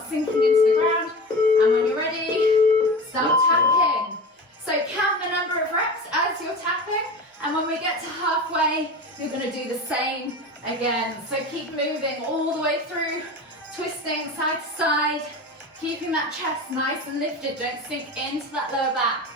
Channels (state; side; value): normal; both; correlation 0.31